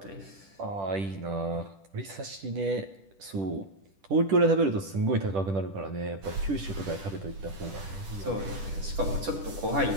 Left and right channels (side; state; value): left; late; 10 ms